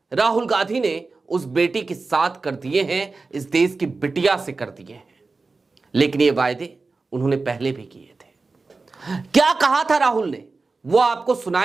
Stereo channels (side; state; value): left; quieter; 3.9 dB